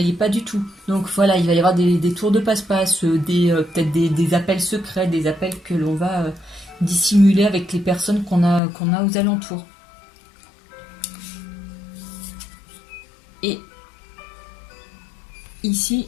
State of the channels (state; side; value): drops out; right; at 8.6 s